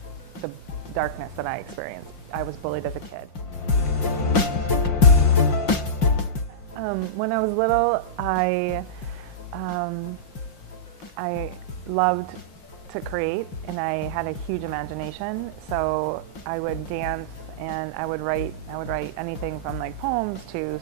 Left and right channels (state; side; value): late; right; 5.6 ms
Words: the darkness that I experienced. I was bullied as a kid. When I was little, I loved to create, and I had a huge imagination. So I would dance and I would write anything from like poems to